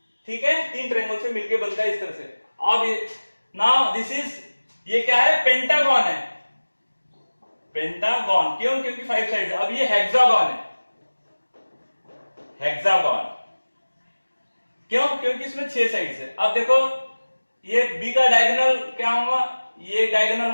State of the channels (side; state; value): both; inverted; correlation -1.00